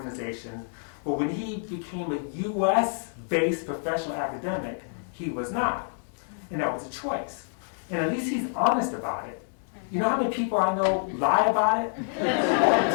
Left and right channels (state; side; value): silent; right; 59 dB below the other